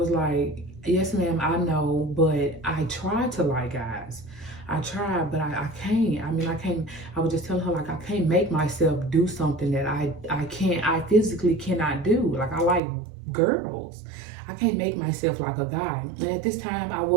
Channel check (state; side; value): drops out; left; at 12.8 s